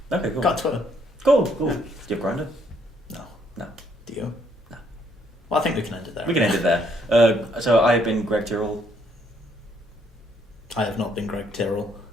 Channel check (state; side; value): normal; both; correlation 0.69